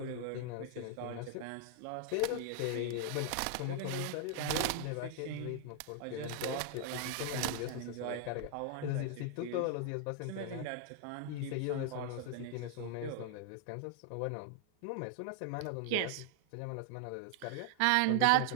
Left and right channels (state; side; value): different; both; correlation 0.00